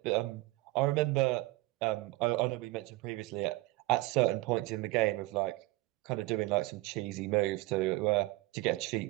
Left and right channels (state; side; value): quieter; left; 20.5 dB